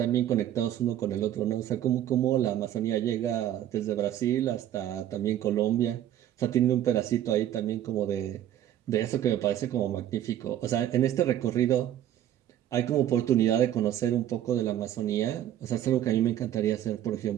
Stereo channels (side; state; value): left; quieter; 11.7 dB